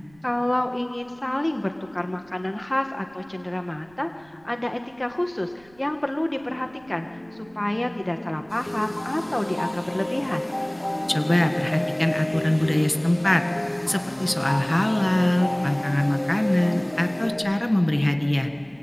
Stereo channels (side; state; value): right; noise; rumble, 29 dB below the sound